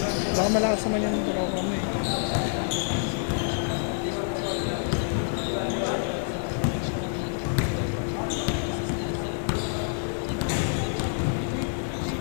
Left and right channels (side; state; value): right; silent; digital silence